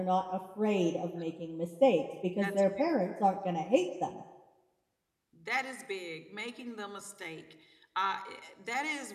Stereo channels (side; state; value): both; identical; correlation 1.00